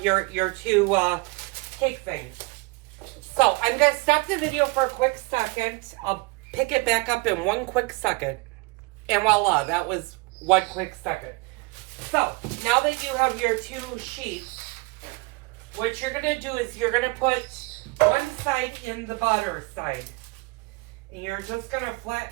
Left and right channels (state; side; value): quieter; left; 26.2 dB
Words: your two cake things. So I'm going to stop the video for a quick second. I'll pick it back up in one quick second. And voila, that was one quick second. So, now that you have your two sheets, what you're going to do is you're going to put one side in the butter side. And you're just going to